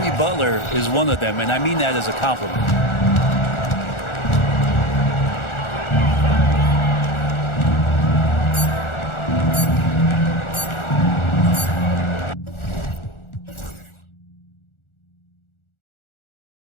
Butler is one of them, and I mean that as a compliment.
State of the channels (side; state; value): right; late; 1.4 ms